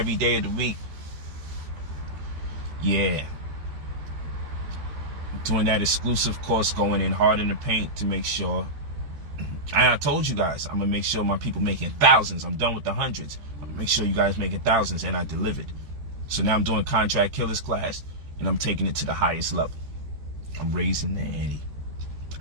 day of the week. Yeah. Doing that exclusive course, going in hard in the paint to make sure. And I told you guys, I'm going to make sure my people making thousands. I'm done with the hundreds. I'm going to make sure you guys making thousands, and I delivered. So now I'm doing Contract Killers class, and I'm taking it to the highest level. I'm raising the ante.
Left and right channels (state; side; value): late; left; 14 ms